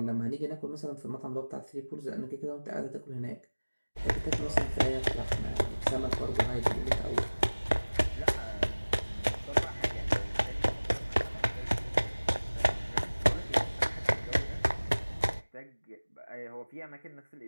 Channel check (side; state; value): both; inverted; correlation -1.00